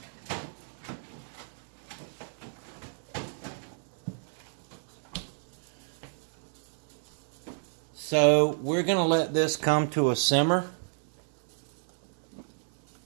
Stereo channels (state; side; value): silent; left; 57 dB below the other